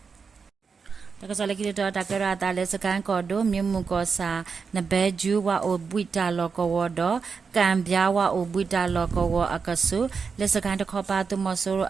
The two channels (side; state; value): left; quieter; 5.4 dB